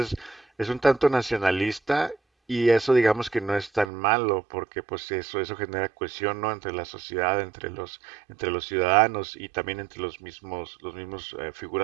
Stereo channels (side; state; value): left; drops out; at 3.9 s